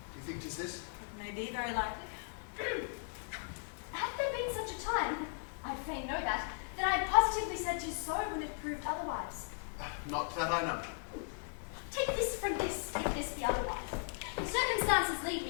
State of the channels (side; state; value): right; silent; 53 dB below the other